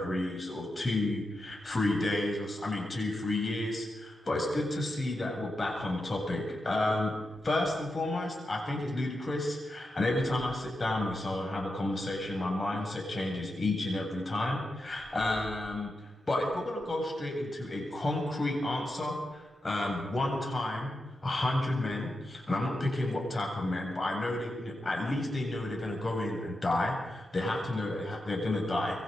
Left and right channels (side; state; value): both; normal; correlation 0.88